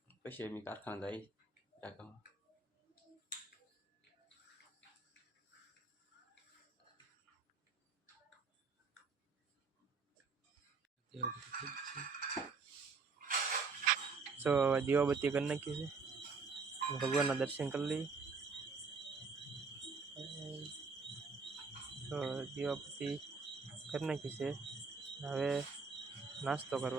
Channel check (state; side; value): quieter; left; 4.7 dB